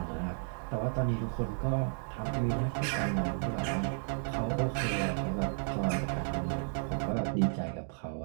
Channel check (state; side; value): silent; left; 56 dB below the other